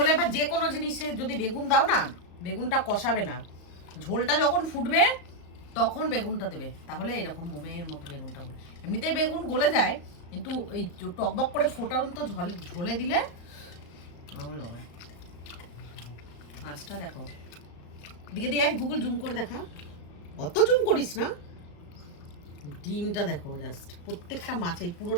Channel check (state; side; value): late; right; 35 ms